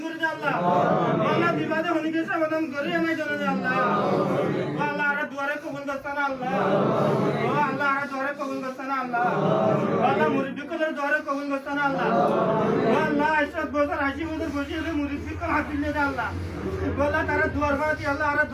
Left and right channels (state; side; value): identical; both; correlation 1.00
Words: করে দে আল্লাহ আল্লাহ বিপদে হনিকে সমাধান করে না জানে আল্লাহ আল্লাহ আর দুয়ারে কবুল করতানা আল্লাহ ও আল্লাহ আর দুয়ারে কবুল করতানা আল্লাহ আল্লাহ মুরিদদের দুয়ারে কবুল করতানা আল্লাহ ও আল্লাহ 80 বছর 80 বছর বসে হলে মুরিদকে হাত দিলে দে আল্লাহ আল্লাহ তারা দুয়ার বাতি আল্লাহ আর